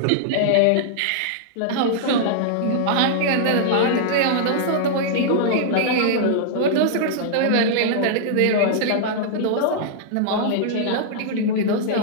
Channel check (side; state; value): both; different; correlation -0.02